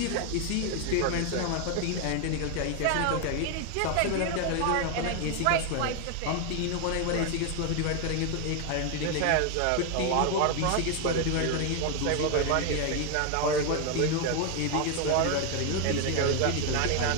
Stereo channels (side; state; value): both; different; correlation 0.01